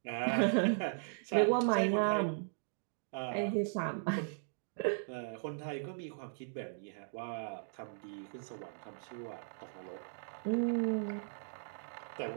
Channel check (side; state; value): left; silent; digital silence